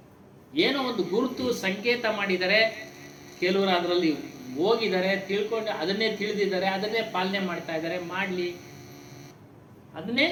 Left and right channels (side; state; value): both; identical; correlation 1.00